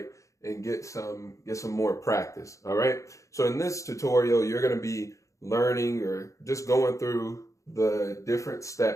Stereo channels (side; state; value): right; late; 0.15 ms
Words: And get some more practice. All right. So in this tutorial, you're going to be learning or just going through the different